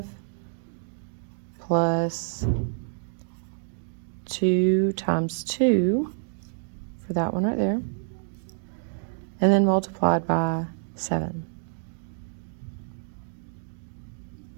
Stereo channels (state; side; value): silent; left; digital silence